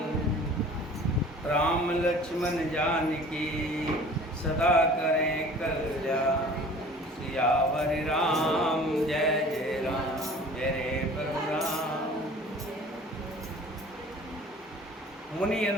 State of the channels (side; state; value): both; normal; correlation 0.46